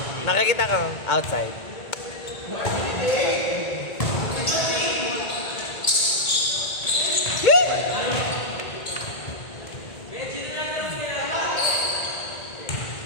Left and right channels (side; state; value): right; late; 1.9 ms